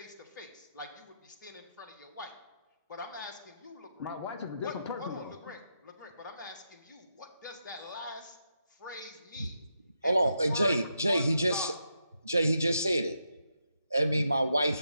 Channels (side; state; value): both; inverted; correlation -0.83